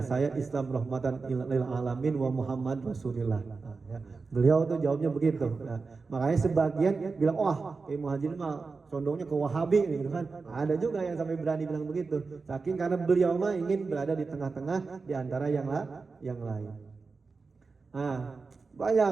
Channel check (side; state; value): left; quieter; 4.4 dB